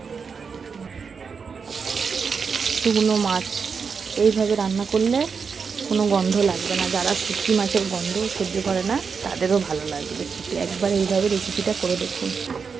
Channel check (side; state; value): left; quieter; 5.7 dB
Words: শুকনো মাছ এইভাবে রান্না করলে কোনো গন্ধ লাগবে না। যারা শুটকি মাছের গন্ধ সহ্য করে না তাদেরও ভালো লাগবে। একবার এইভাবে রেসিপিটা করে দেখুন।